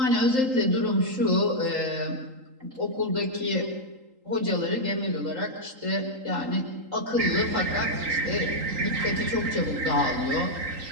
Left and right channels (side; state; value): left; late; 3.8 ms